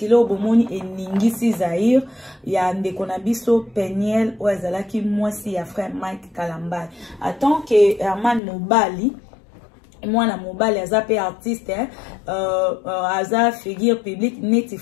au Bomoni et Ningisi Zahir, il y a Ndekonabiso Peniel ou Azalaki Mwasi ya frère Mike Kalambay. En tant que Herman Mobali, moi la mobile aza pe artiste aza figure publique neti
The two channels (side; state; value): right; drops out; at 8.4 s